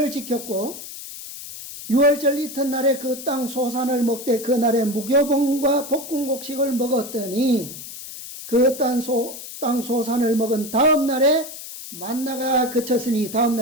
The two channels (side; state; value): left; noise; hiss, 12 dB below the sound